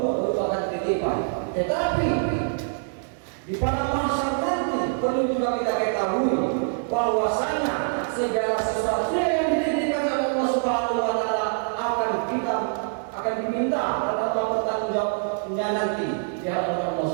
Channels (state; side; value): silent; left; digital silence